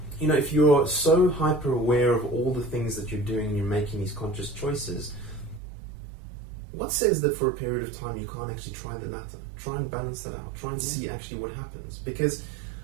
if you're so hyper aware of all the things that you're doing and you're making these conscious choices, what says that for a period of time you can't actually try the latter? Try and balance that out. Try and see actually what happens. Because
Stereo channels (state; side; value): drops out; left; at 5.6 s